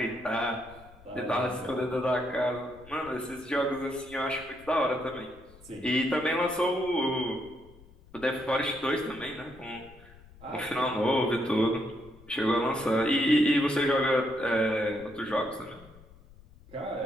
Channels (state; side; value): noise; left; rumble, 23 dB below the sound